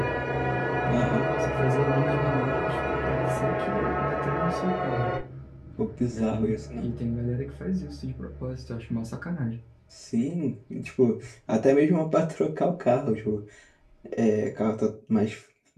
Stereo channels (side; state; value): both; identical; correlation 1.00